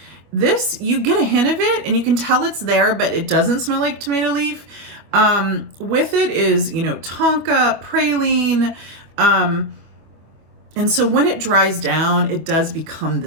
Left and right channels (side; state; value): left; late; 25 ms